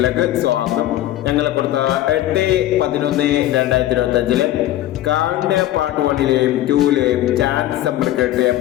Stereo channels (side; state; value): right; quieter; 14.1 dB